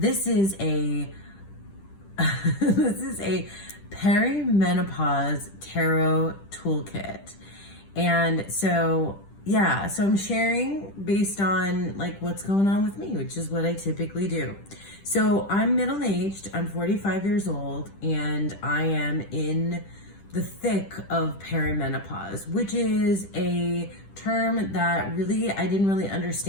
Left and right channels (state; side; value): late; right; 10 ms